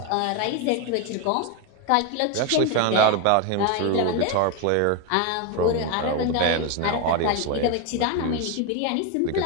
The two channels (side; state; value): both; different; correlation 0.01